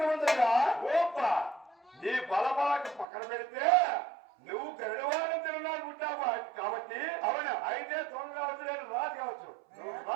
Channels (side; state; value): left; drops out; at 3.1 s